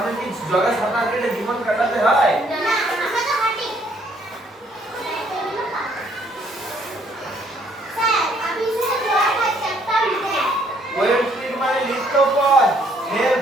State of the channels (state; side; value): normal; both; correlation 0.66